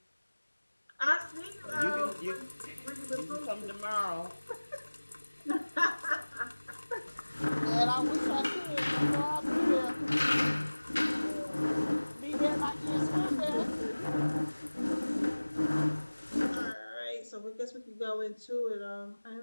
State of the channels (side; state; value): both; inverted; correlation -1.00